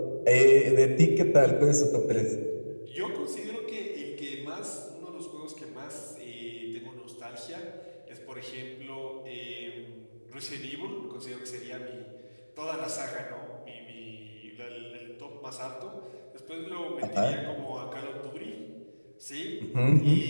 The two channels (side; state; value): both; inverted; correlation -1.00